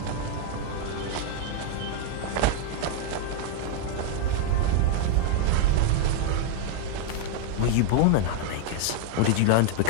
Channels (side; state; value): both; different; correlation 0.00